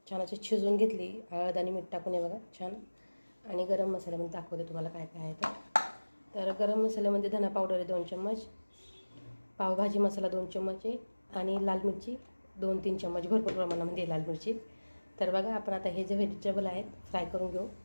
छान अशी शिजवून घेतली हळद आणि मीठ टाकून. हे बघा छान. आणि गरम मसाल्यामध्ये दाखवते तुम्हाला काय काय आहे. तर गरम मसाल्यामध्ये धना पावडर आहे 2 चम्मच, पावभाजी मसाला 2 चम्मच आहे आणि लाल मिरची 2-3 चम्मच भरपूर प्रमाणामध्ये लाल मिरची. तर बघा, आपण आता हे जे व्हेजिटेबल आहेत फ्राय करून घेऊ.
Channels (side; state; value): both; inverted; correlation -1.00